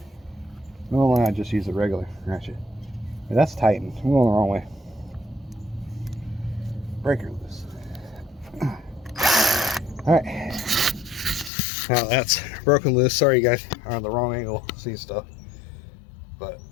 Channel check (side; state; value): right; drops out; at 11.5 s